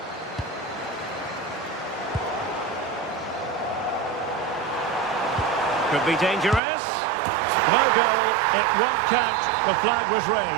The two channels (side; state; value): left; drops out; at 6.6 s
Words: Could be dangerous. No goal. It won't count. The flag was